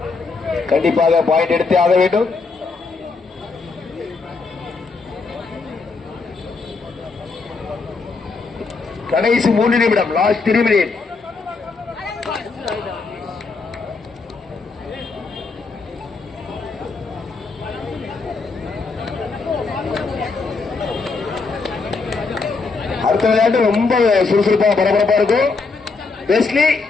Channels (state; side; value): quieter; right; 4.3 dB